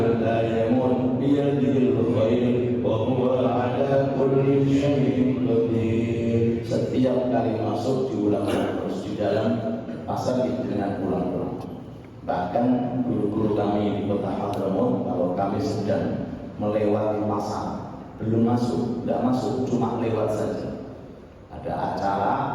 la yamut bi yadihi al-khair wa huwa ala kulli syai'in qadir. Setiap kali masuk diulang terus di dalam pasar dengan ulang-ulang. Bahkan guru-guru kami di kota Hadramaut, kalau kami sedang melewati pasar, belum masuk, tidak masuk, cuma lewat saja. Ada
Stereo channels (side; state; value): both; identical; correlation 1.00